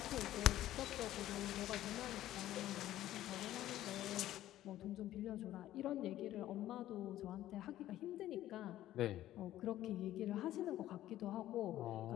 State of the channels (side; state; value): right; quieter; 13.7 dB